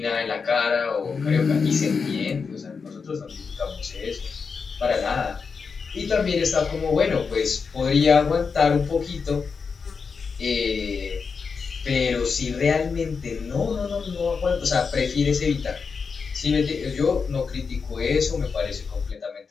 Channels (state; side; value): quieter; right; 5.3 dB